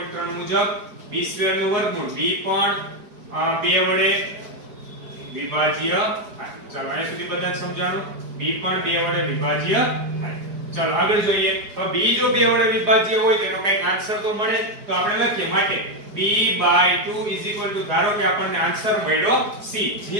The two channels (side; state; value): left; late; 4.9 ms